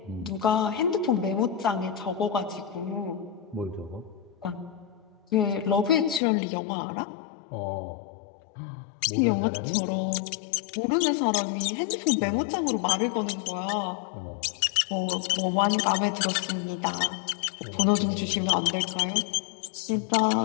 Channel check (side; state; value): right; drops out; at 6.2 s